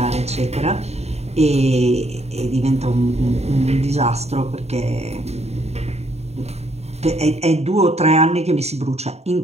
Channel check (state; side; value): late; left; 0.31 ms